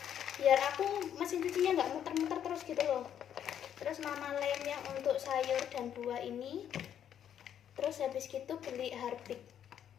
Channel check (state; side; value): quieter; right; 9.5 dB